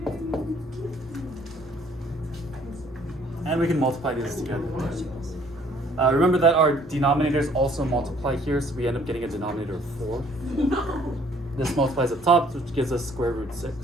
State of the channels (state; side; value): normal; both; correlation 0.61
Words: And we can multiply these together. Remember that our denominators also multiply here, so we end up getting a denominator of 4. This multiplies up top, which gives us square root